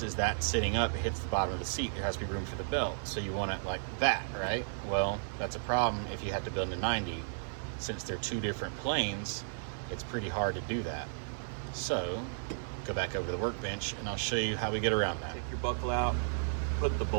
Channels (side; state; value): left; silent; digital silence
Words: that sitting up, it hits the bottom of the seat. There has to be room for the belt, so you want it like that, right? Well, that's a problem if you had to build a 90. Since they're 2 different planes, it's pretty hard to do that. So go back over to the workbench and I'll show you how we get around that. Take your buckle out, put the